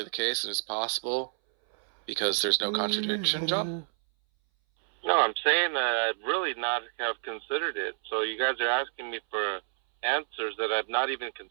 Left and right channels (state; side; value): silent; left; 59 dB below the other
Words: the case and it's possible because there's no contradiction, John? No, I'm saying that I'd really not have considered it. So you guys are asking me for answers that I've not even